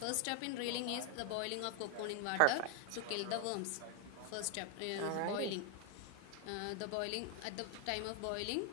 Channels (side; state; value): both; different; correlation 0.00